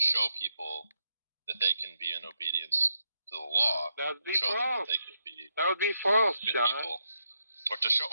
people that they can be in obedience to the law. That would be false. That they could be that would be false, John. People. Or to show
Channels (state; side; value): inverted; both; correlation -0.81